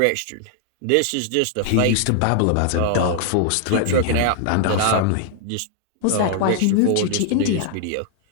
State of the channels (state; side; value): different; both; correlation 0.00